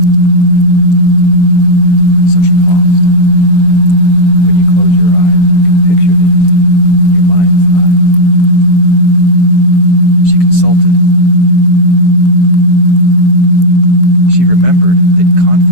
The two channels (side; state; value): right; late; 7.3 ms